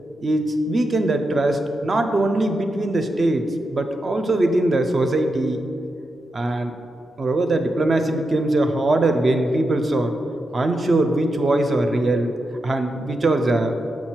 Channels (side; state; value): both; normal; correlation 0.87